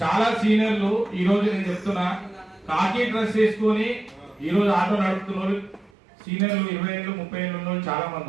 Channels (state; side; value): drops out; left; at 5.9 s